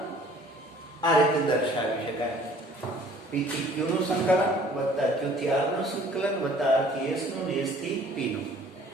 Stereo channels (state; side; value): normal; both; correlation 0.54